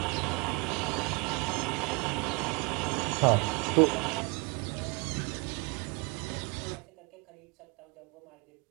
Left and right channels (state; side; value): quieter; left; 29.2 dB